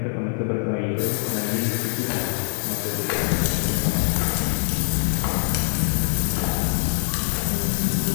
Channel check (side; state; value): right; silent; 63 dB below the other